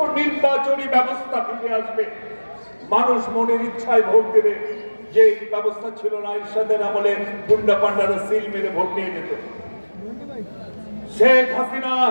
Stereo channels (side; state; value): both; inverted; correlation -1.00